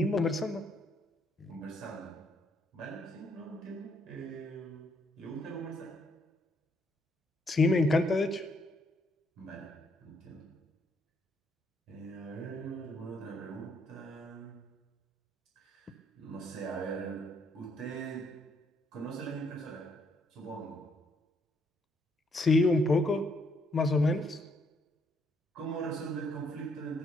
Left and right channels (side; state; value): both; normal; correlation 0.71